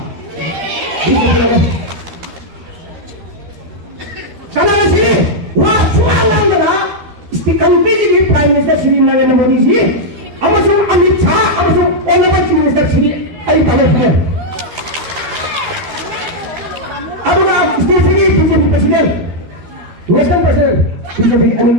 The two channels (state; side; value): late; left; 12 ms